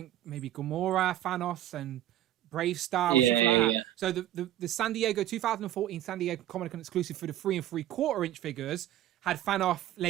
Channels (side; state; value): left; quieter; 13.0 dB